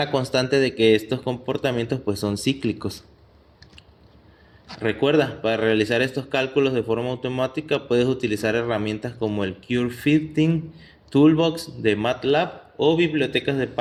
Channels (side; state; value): both; identical; correlation 1.00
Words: constante de que estos comportamientos pues son cíclicos. Recuerda, para realizar estos cálculos de forma automática puedes utilizar herramientas como el Curve Fitting Toolbox de MATLAB o bibliotecas de